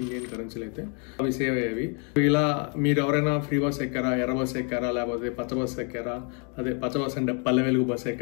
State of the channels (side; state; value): right; quieter; 38.9 dB